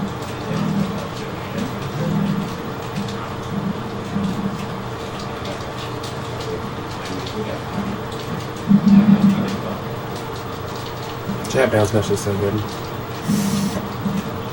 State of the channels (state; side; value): identical; both; correlation 1.00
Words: Jab bounce mesh is so good.